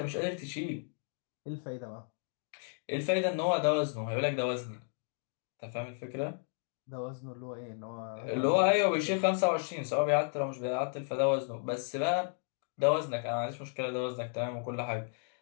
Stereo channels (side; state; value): right; silent; 55 dB below the other